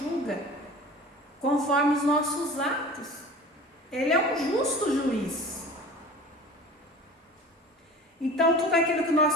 conforme os nossos atos. Ele é um justo juiz. Então, tudo aquilo que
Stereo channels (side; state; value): both; normal; correlation 0.40